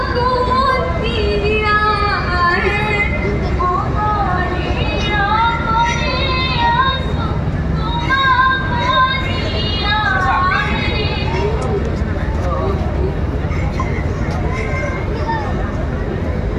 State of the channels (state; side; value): identical; both; correlation 1.00